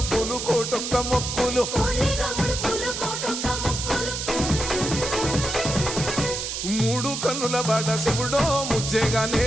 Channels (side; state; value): right; noise; hiss, 4 dB below the sound